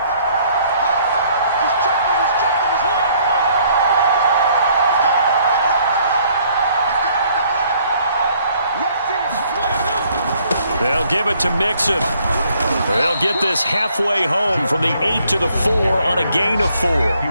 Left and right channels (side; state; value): both; inverted; correlation -0.64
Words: They'll give it to Mixon. They'll get this halfway home from the 8 to the 4 on a gain of 4.